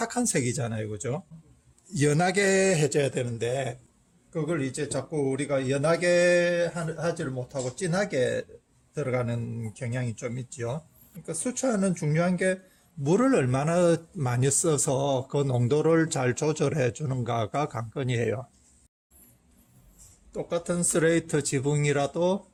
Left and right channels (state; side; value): identical; both; correlation 1.00